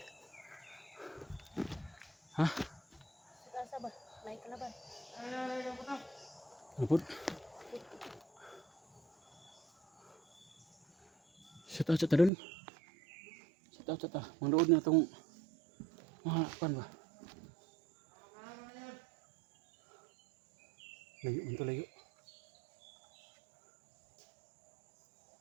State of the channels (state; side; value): drops out; left; at 12.3 s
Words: Ha? Asa ba? May kalaban. Napod. Shout out dun. Shout out. Manood na itong mga pan ba? Layo man to layo.